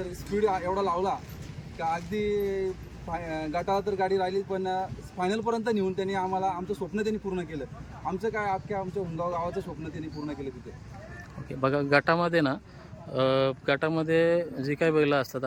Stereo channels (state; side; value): identical; both; correlation 1.00